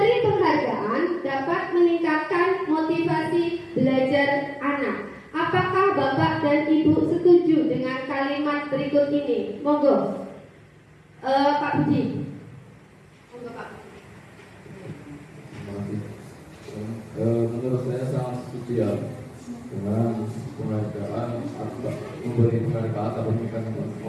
penghargaan dapat meningkatkan motivasi belajar anak. Apakah Bapak dan Ibu setuju dengan kalimat berikut ini? Monggo, Pak Budi. Monggo Pak. Menurut saya sangat setuju ya dengan penghargaan atau memberi penghargaan atau memberikan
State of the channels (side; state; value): both; identical; correlation 1.00